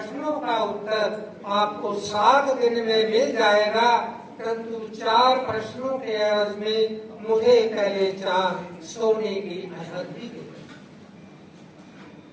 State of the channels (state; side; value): identical; both; correlation 1.00